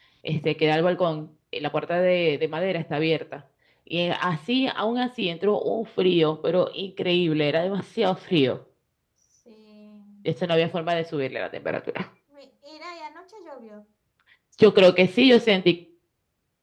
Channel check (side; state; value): both; identical; correlation 1.00